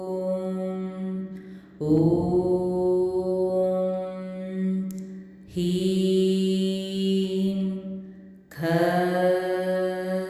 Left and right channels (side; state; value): both; identical; correlation 1.00